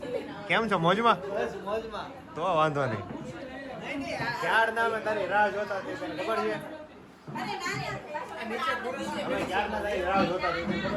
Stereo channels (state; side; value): identical; both; correlation 1.00